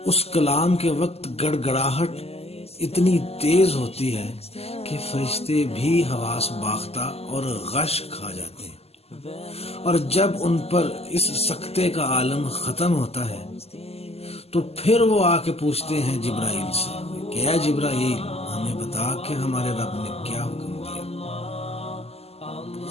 اس کلام کے وقت گڑگڑاہٹ اتنی تیز ہوتی ہے کہ فرشتے بھی حواس باختہ اور غش کھا جاتے ہیں، اور جب ان پر اس سکتے کا عالم ختم ہوتا ہے تو پھر وہ آ کے پوچھتے ہیں جبرائیل سے کہ اے جبرائیل، ہمیں بتا کہ ہمارے رب نے کیا حکم دیا۔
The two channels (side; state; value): right; late; 0.29 ms